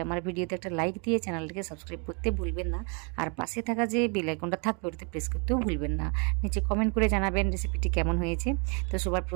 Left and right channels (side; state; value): left; quieter; 35.5 dB